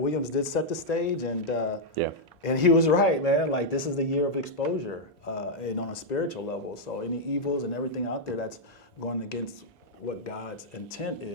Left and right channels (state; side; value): normal; both; correlation -0.03